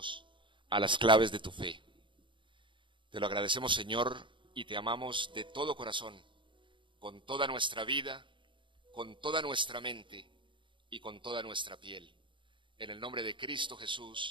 a las claves de tu fe. Te lo agradecemos, Señor, y te amamos de todo corazón, con toda nuestra vida, con toda nuestra mente y con toda nuestra piel. En el nombre de Cristo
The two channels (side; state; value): left; late; 0.24 ms